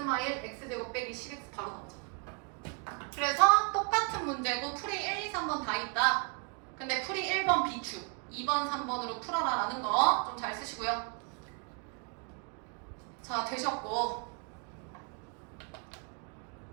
x제곱 빼기 10x 바로 나오잖아. 그래서 똑같은 문제고 풀이 1, 2, 3번 다 있다. 근데 풀이 1번 비추 2번, 3번으로 풀어라 라는 거 좀 잘 쓰시고요. 자, 되셨고.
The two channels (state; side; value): quieter; left; 38.0 dB